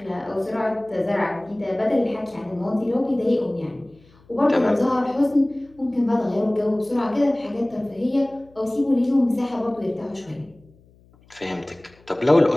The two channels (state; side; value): noise; left; hum, 29 dB below the sound